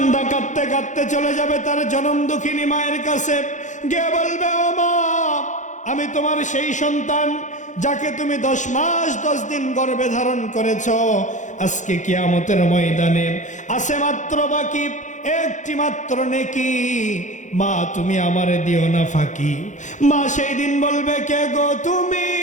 কাঁদতে কাঁদতে চলে যাবে তার জনম দুঃখিনী মায়ের কাছে, গিয়ে বলবে ও মা আমি তোমার সেই সন্তান যাকে তুমি 10 মাস 10 দিন গর্ভে ধারণ করেছ, আজকে কিয়ামতের ময়দানে আছে মাত্র বাকি একটি মাত্র নেকি, মা তুমি আমারে দিও না ফাঁকি। মা সেই দিন বলবে কে গো তুমি?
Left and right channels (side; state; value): right; late; 0.36 ms